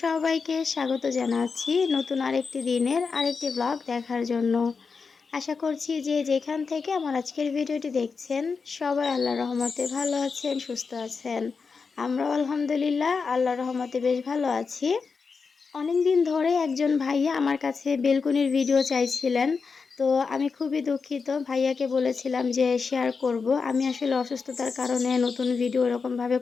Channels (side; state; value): right; quieter; 5.1 dB